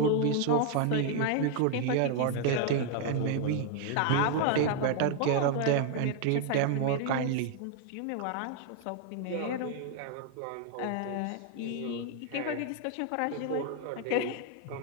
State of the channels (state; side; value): different; both; correlation 0.00